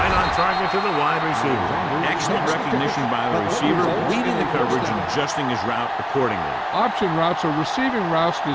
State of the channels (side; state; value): both; identical; correlation 1.00